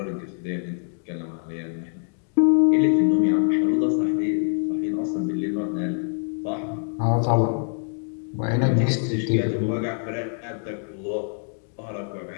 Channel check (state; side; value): silent; right; digital silence